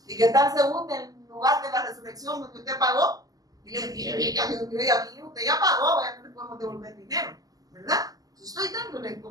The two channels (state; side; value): late; left; 0.17 ms